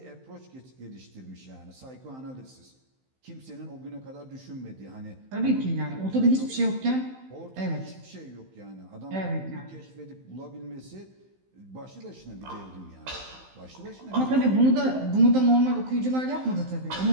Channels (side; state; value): left; late; 15 ms